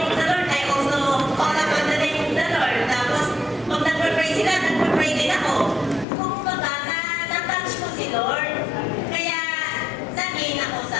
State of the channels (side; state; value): right; drops out; at 6.1 s